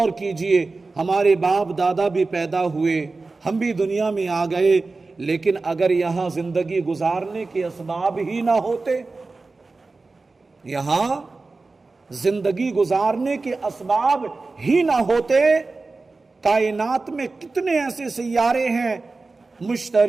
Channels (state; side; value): quieter; left; 3.7 dB